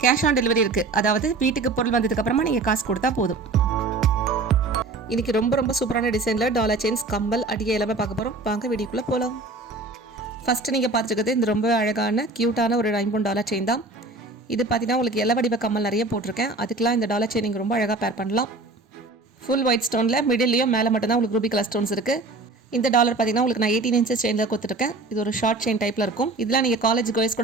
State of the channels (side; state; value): left; quieter; 3.2 dB